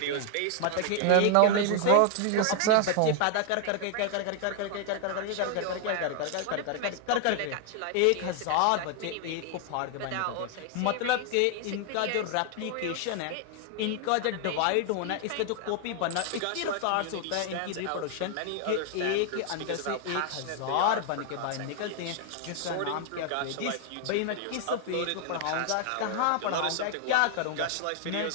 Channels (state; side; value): different; both; correlation 0.00